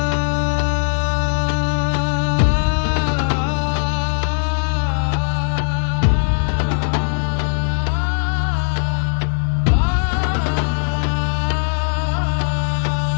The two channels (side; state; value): right; silent; digital silence